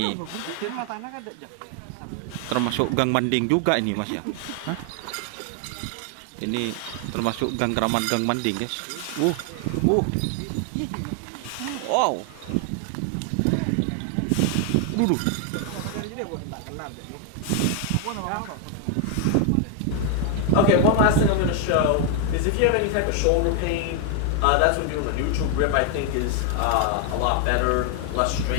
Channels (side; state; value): both; different; correlation 0.01